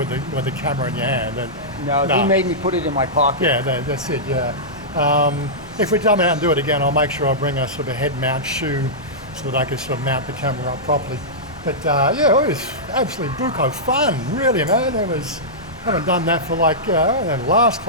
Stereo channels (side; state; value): both; normal; correlation -0.14